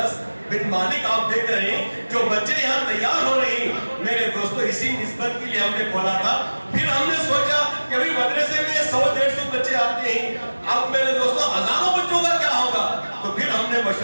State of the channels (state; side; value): inverted; both; correlation -1.00